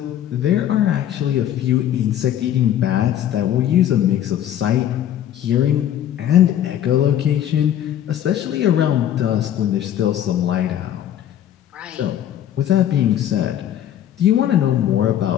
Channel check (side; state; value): right; quieter; 11.0 dB